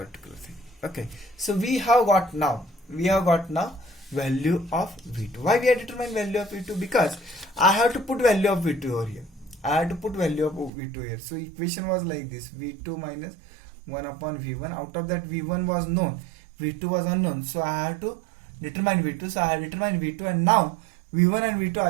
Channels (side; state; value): left; drops out; at 10.7 s